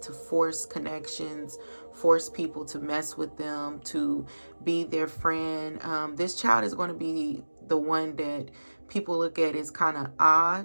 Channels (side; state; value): both; inverted; correlation -1.00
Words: force connections, force people to mess with them, to be their friend. This child is going to be the one that people look at as kind of